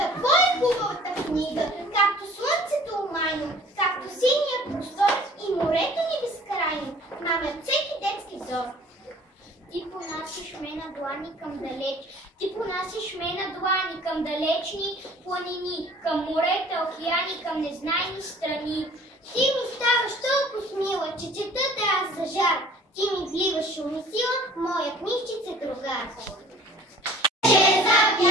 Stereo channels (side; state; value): both; normal; correlation 0.50